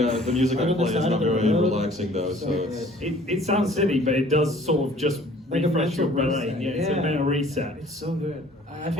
the music I Right on the play is side not of the very road. relaxing though, so it's. it sounds silly, but it does sort of just Like a refresh your mental brain. reset. Yeah, it's a Yeah. mental reset. It's so good. I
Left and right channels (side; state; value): both; normal; correlation 0.53